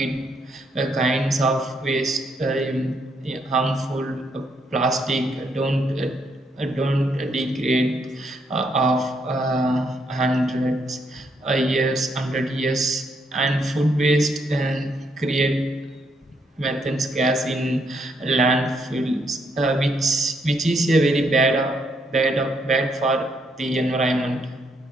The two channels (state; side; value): normal; both; correlation 0.74